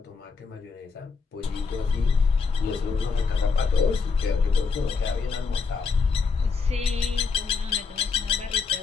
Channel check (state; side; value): quieter; right; 4.9 dB